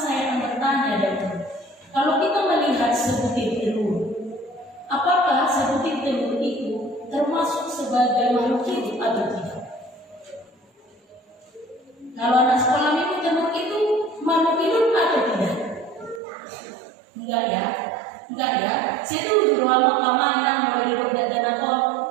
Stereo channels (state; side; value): drops out; left; at 16.2 s